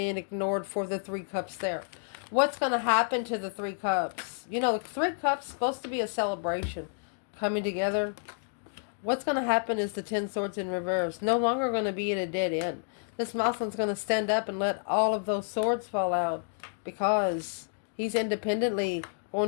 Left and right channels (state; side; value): silent; right; digital silence